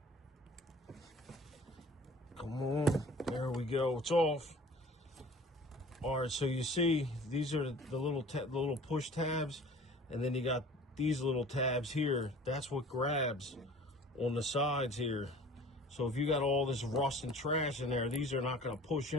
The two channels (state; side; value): normal; both; correlation 0.46